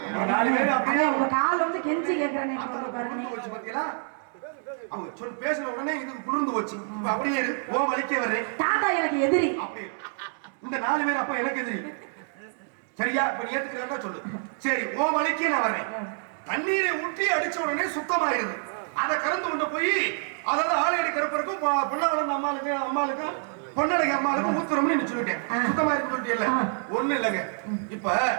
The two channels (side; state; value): left; silent; 60 dB below the other